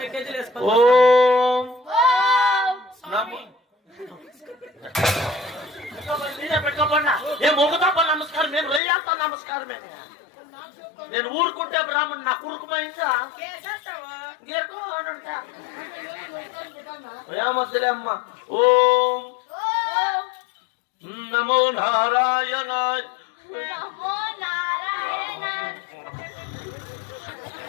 కేజీలు వేసుకో ఓం నమో ఏ మొగతప్ప నమస్కారం నేను రయ్యాత నమస్కారమే నేను ఊరుకుంటే బ్రాహ్మణ్ నా కురుకుమైందా కేసంటావా ఏమద్దులే అమ్మ ఓం నమో నారాయణ నమో నారాయణ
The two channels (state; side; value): drops out; right; at 8.8 s